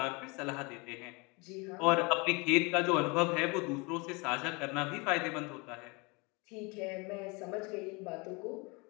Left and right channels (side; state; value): right; quieter; 28.5 dB